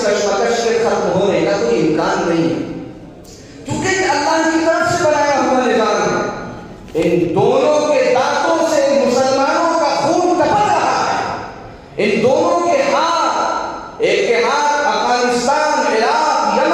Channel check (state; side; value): identical; both; correlation 1.00